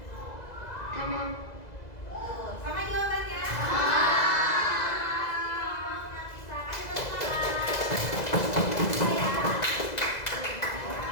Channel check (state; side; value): late; right; 2.0 ms